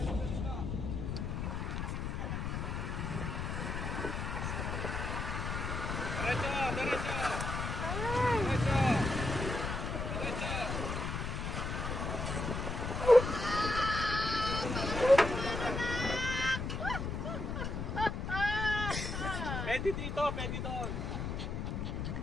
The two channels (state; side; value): noise; left; rumble, 3 dB below the sound